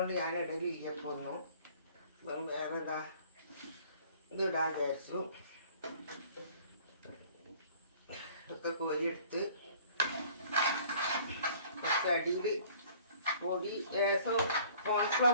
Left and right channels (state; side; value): inverted; both; correlation -0.53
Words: ഞാൻ ഇടലില്ല ഇപ്പോൾ ഒന്നും. വേറെ ഇതാ ഇത് ഇടാൻ വിചാരിച്ചു. ഇതൊക്കെ കോരിയെടുത്ത് കുറച്ച് അടിയിൽ പൊടി ലേശം